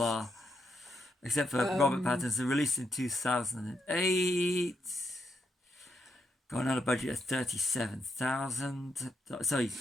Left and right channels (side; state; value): both; normal; correlation 0.81